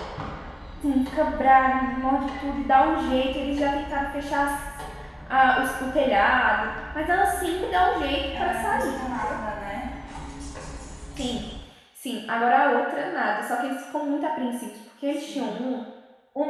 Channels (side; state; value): both; identical; correlation 1.00